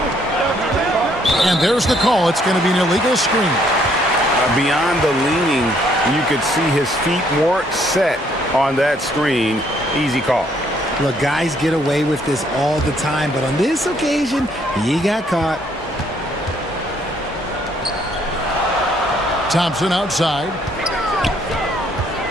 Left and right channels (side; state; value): both; normal; correlation 0.67